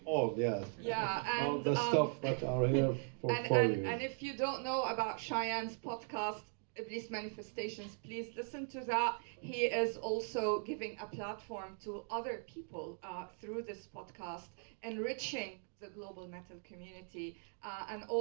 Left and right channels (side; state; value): left; silent; 52 dB below the other